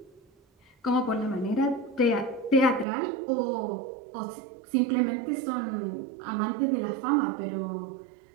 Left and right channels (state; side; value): drops out; left; at 2.9 s